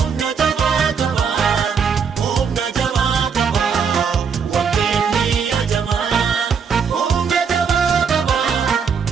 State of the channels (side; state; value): left; quieter; 6.3 dB